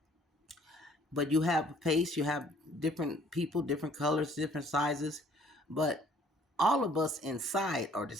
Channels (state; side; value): normal; both; correlation 0.58